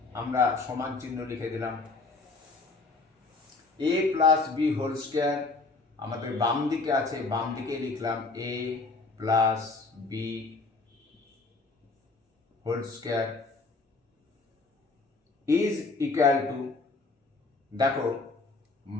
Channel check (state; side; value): quieter; right; 3.7 dB